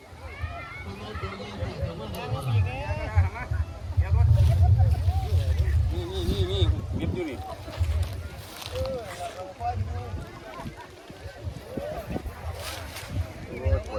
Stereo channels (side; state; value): both; identical; correlation 1.00